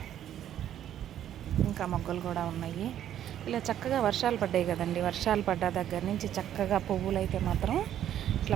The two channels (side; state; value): left; quieter; 10.9 dB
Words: ఇంకా మొగ్గలు కూడా ఉన్నాయి. ఇలా చక్కగా వర్షాలు పడ్డాయి కదండి. వర్షాలు పడ్డ దగ్గర నుంచి చక్కగా పువ్వులు అయితే మాత్రం ఇట్లా